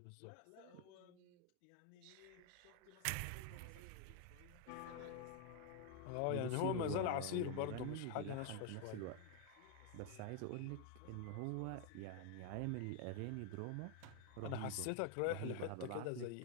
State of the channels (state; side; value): different; both; correlation 0.01